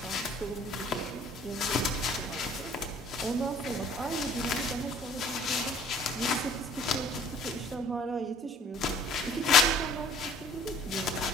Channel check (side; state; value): both; normal; correlation 0.54